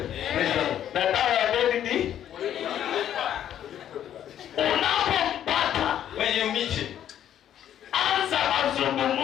Na dawa ya deni ni unapompata, When you meet him, anza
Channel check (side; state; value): right; quieter; 10.6 dB